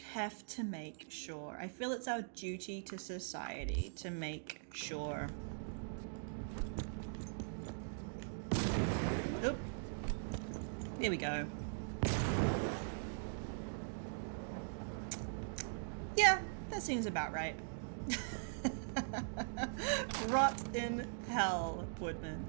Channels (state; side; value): silent; left; digital silence